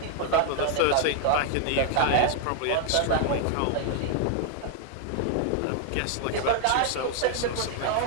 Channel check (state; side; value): different; both; correlation 0.00